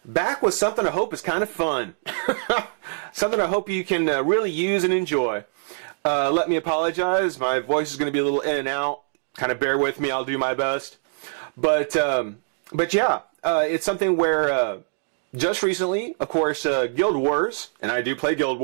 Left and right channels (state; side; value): silent; left; digital silence